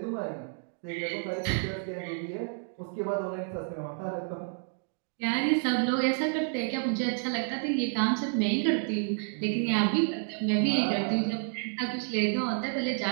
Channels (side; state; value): left; silent; 56 dB below the other